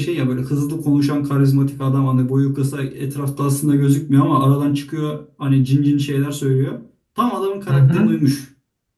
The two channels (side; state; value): both; identical; correlation 1.00